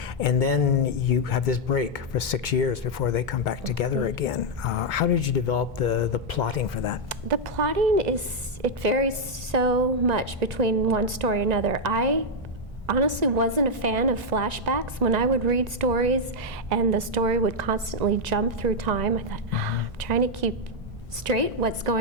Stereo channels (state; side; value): normal; both; correlation -0.01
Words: and then you have this break for 6 years before they come back together again. How did you develop the plotting for that? The plotting it varies so much between one story and another. I honestly wasn't a fan of flashbacks. When I would read stories and the story would constantly jump through time, I thought, I'm trying to keep straight what's